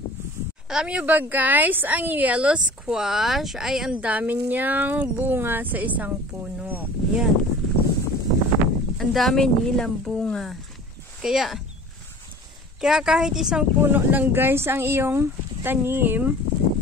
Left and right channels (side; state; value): both; normal; correlation 0.43